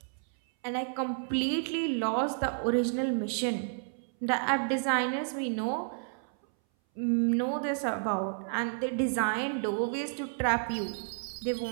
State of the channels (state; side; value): silent; left; 57 dB below the other